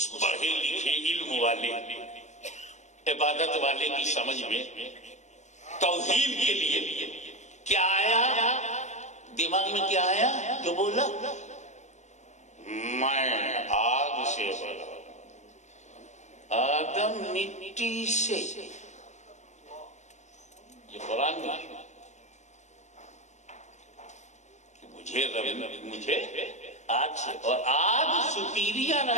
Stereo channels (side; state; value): right; late; 0.34 ms